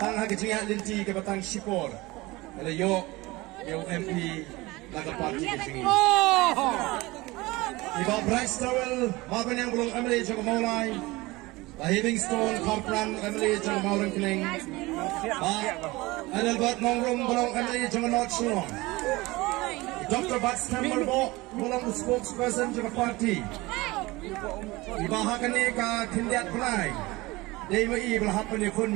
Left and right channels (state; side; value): quieter; left; 21.3 dB